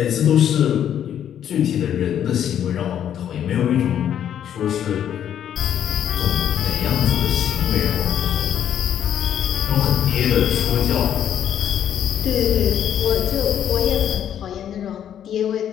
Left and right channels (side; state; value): right; quieter; 9.8 dB